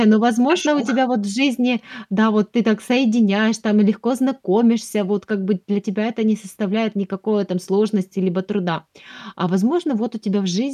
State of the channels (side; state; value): both; identical; correlation 1.00